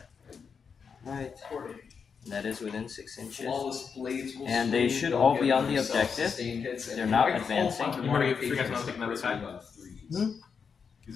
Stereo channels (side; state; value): right; quieter; 6.1 dB